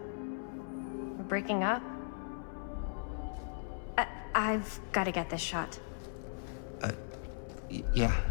we're breaking up? I've got to get this shot. Yeah,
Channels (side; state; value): right; silent; 53 dB below the other